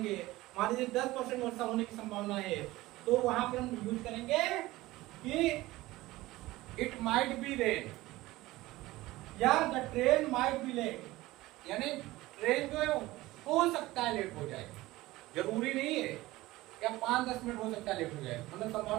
मान लीजिए 10% वर्षा होने की संभावना है, तो वहां पर हम यूज करेंगे कि इट माइट बी रेन, या the train might be late, यानी ट्रेन जो है हो सकता है लेट हो जाए, जरूरी नहीं है, या 5-10 मिनट हो सकता है लेट हो जाए, मतलब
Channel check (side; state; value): left; quieter; 18.5 dB